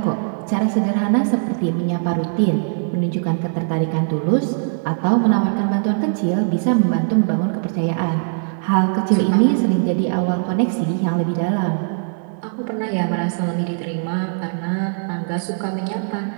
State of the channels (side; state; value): left; silent; 61 dB below the other